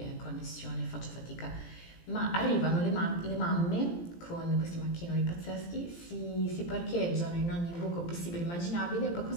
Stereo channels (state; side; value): late; right; 17 ms